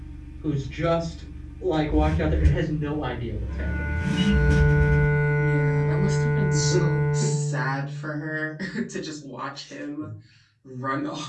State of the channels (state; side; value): identical; both; correlation 1.00